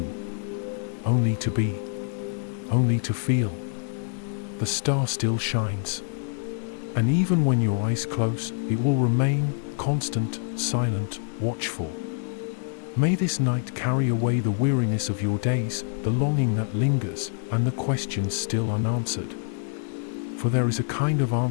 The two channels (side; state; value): right; silent; 58 dB below the other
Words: Only to be. Only to feel. The star still shines. And even when your eyes close, it will remain, constant, silent, watchful. May this night carry away the weariness of your days, the longing that lingers, and the questions still unanswered. For there is a kind of